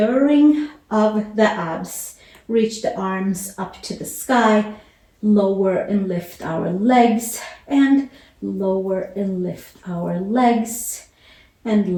of the abs. Reach the arms up to the sky. Lower and lift our legs. And lower and lift our legs.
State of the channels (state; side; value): identical; both; correlation 1.00